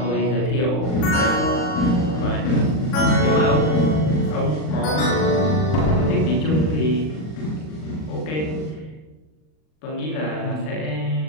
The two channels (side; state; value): right; late; 39 ms